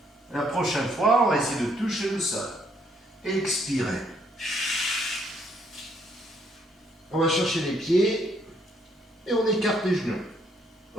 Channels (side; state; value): both; normal; correlation 0.69